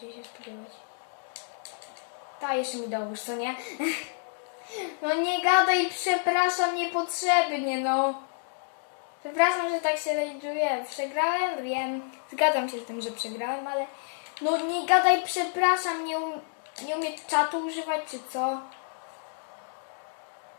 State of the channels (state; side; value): silent; right; digital silence